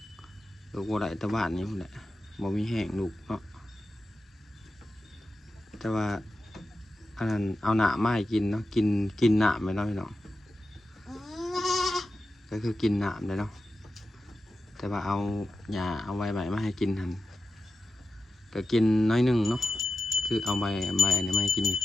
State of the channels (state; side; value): normal; both; correlation 0.92